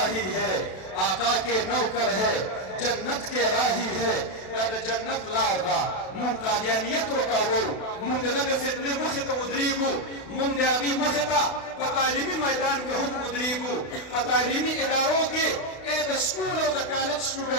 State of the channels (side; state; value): right; late; 32 ms